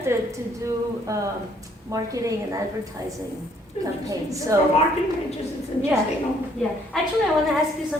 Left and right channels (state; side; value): normal; both; correlation 0.65